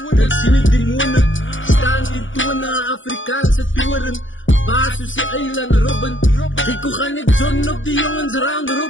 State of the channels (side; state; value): right; late; 0.56 ms